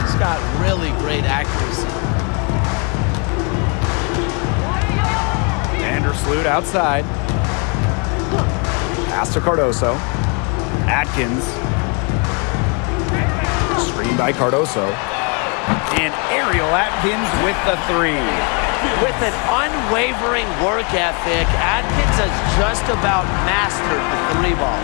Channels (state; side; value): quieter; right; 35.2 dB